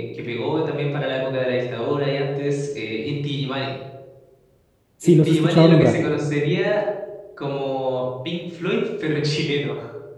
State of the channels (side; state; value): both; identical; correlation 1.00